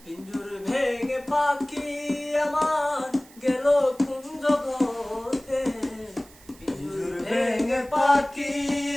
পিঞ্জুর ভেঙে পাখি আমার গেল কোন জগতে। পিঞ্জুর ভেঙে পাখি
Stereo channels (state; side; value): noise; right; hiss, 24 dB below the sound